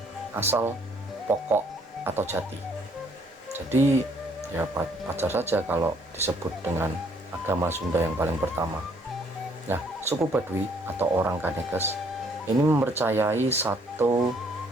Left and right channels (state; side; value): normal; both; correlation 0.65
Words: asal, pokok, atau jati. Jadi ya wajar saja kalau disebut dengan agama Sunda yang paling pertama. Nah, suku Baduy atau orang Kanekes ini mempercayai satu